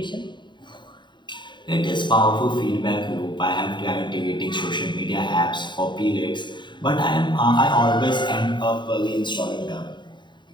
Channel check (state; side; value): late; right; 0.22 ms